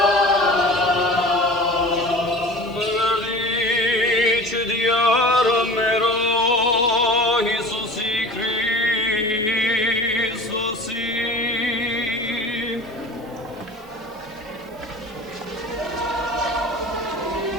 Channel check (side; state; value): both; normal; correlation 0.39